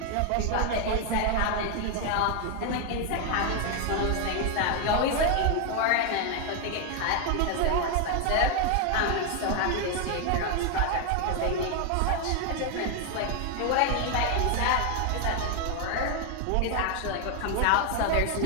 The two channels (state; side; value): different; both; correlation 0.01